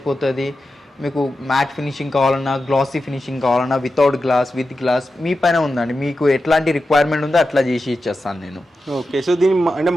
మీకు మ్యాట్ ఫినిషింగ్ కావాలన్నా, గ్లాసీ ఫినిషింగ్ కావాలన్నా, వితౌట్ గ్లాస్, విత్ గ్లాస్ మీ పైన ఉందండి. మీకు ఎట్లాంటి రిక్వైర్మెంట్ ఉందో అట్లా చేసి ఇచ్చేస్తాను నేను. ఓకే, సో దీని అంటే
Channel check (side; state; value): both; normal; correlation 0.91